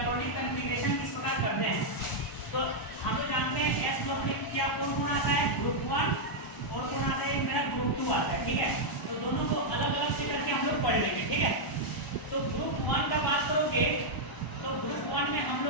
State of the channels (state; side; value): late; right; 1.0 ms